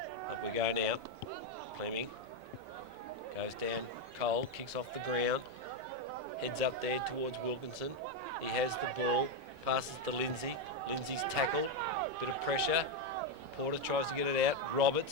Up we go now. Fleming goes down. Cole kicks off the ground. Heads up there towards Wilkinson. He has the ball. Passes to Lindsay. Lindsay's tackled. Bit of pressure. Porter tries to get it out.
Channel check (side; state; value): left; late; 5.3 ms